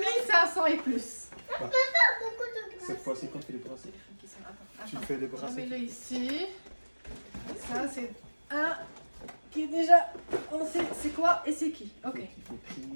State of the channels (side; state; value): both; inverted; correlation -1.00